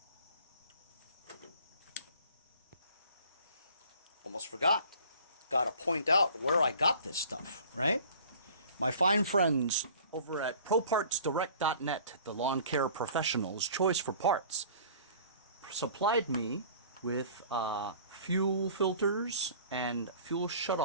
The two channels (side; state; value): both; inverted; correlation -0.48